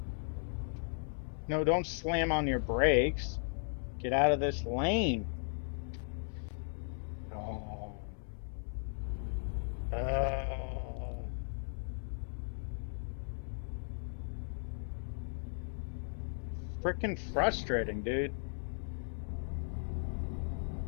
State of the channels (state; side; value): silent; right; 53 dB below the other